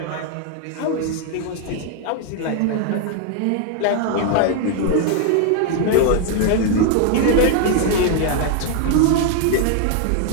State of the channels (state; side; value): different; both; correlation 0.01